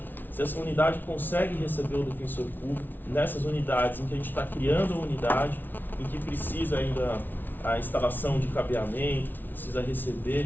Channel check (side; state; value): right; late; 0.089 ms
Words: se essa unidade consegue receber o defensor público, nessas unidades em que a gente está criando a unidade, em que precisa ainda a instalação de cabeamento, precisa